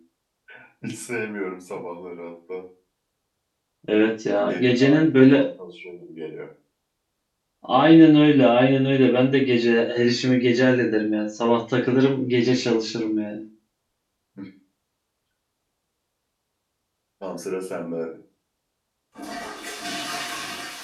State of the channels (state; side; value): identical; both; correlation 1.00